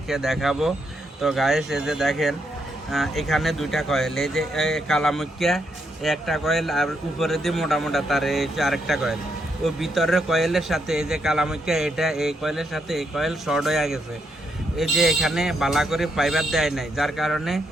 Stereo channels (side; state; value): both; normal; correlation 0.78